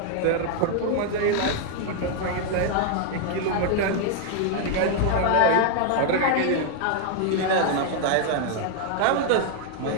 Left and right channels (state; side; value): different; both; correlation 0.00